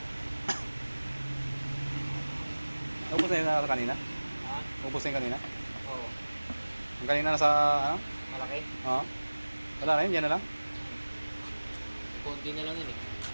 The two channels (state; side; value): inverted; both; correlation -1.00